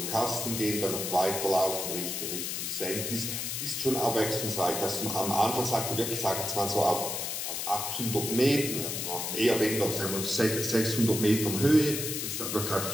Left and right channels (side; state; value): left; noise; hiss, 3 dB below the sound